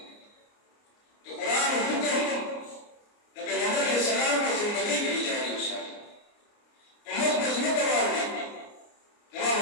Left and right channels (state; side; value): late; right; 29 ms